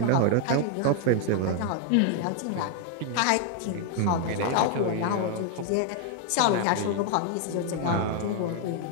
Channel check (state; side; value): different; both; correlation 0.00